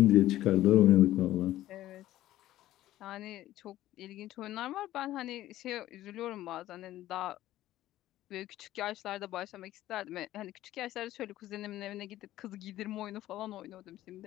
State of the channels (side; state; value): right; quieter; 14.5 dB